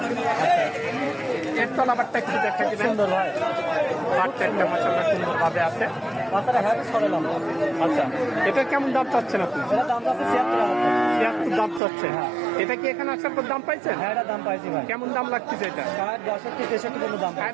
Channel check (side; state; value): left; drops out; at 11.8 s